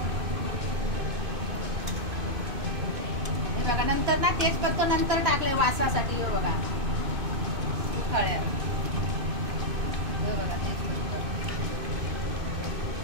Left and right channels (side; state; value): left; late; 2.5 ms